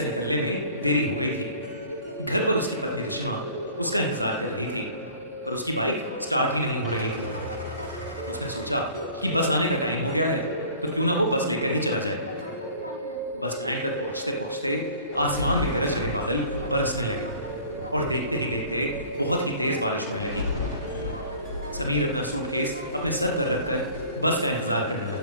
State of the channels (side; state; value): both; inverted; correlation -0.48